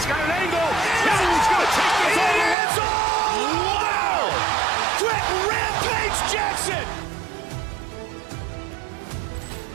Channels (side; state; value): left; drops out; at 2.6 s